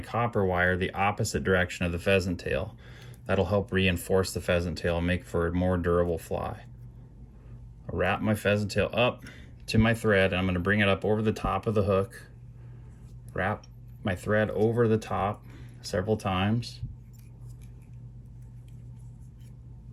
wire, the opposite direction of the pheasant tail. That'll help reinforce the pheasant tail and make for a more durable fly. I'll wrap my pheasant tail up to my thread, and I'm going to bring it up over the top of the hook. Wrap my thread over the top several times.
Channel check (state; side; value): identical; both; correlation 1.00